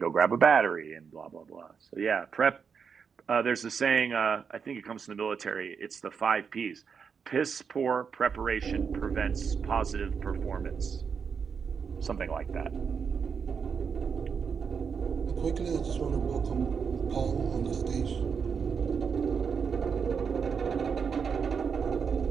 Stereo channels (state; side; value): quieter; left; 6.3 dB